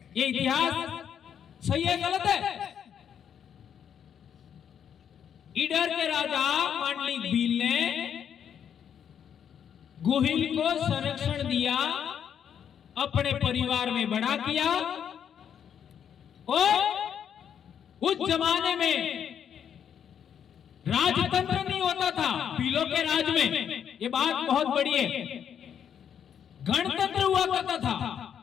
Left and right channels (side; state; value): right; quieter; 8.5 dB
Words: ये इतिहास सही है गलत है? ईडर के राजा मांडलिक भील ने गुहिल को संरक्षण दिया, अपने परिवार में बड़ा किया और उस जमाने में राजतंत्र नहीं होता था भीलों के राज में। ये बात बहुत बड़ी है। गणतंत्र हुआ करता था